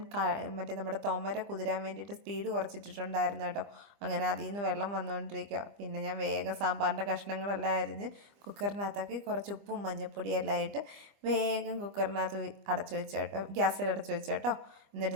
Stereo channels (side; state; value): left; late; 25 ms